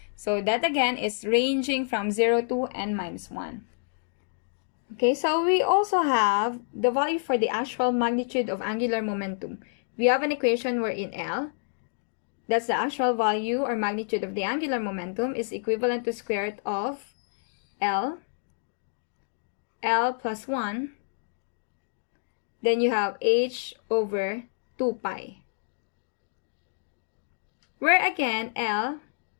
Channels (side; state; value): right; silent; digital silence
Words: So that again is ranging from 0 to n minus 1. Okay, so we also have the value for the actual magnitude of angular momentum. We have an equation wherein L, that's the actual value or magnitude of the angular momentum, is equivalent to square root of L plus 1. Then you have h over 2 pi. Where again, L